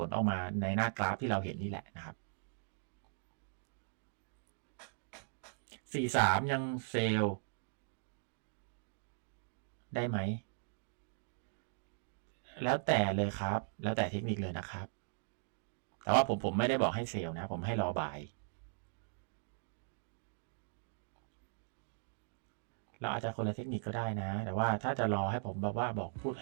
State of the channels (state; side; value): silent; left; digital silence